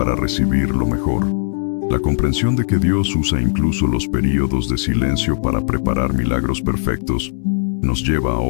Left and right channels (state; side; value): silent; right; 67 dB below the other